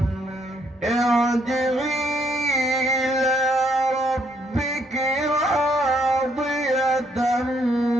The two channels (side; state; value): both; normal; correlation 0.71